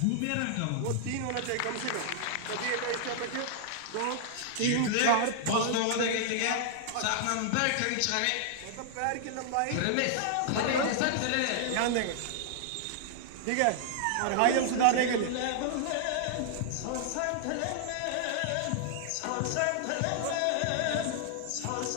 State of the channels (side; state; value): both; different; correlation -0.01